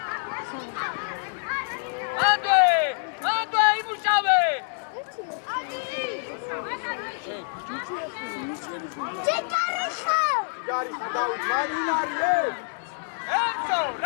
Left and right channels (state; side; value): silent; right; digital silence